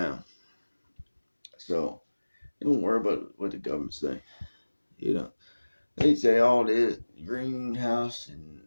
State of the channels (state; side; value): inverted; both; correlation -1.00